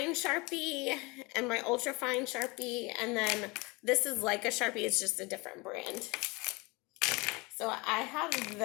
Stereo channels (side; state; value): right; quieter; 25.8 dB